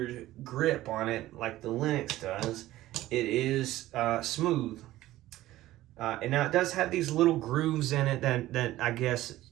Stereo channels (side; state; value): left; quieter; 15.6 dB